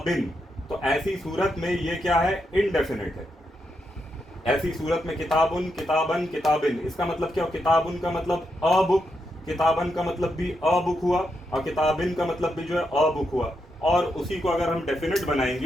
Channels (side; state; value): both; normal; correlation 0.83